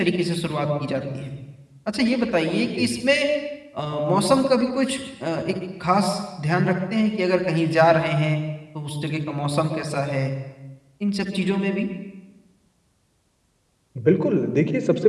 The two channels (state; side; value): identical; both; correlation 1.00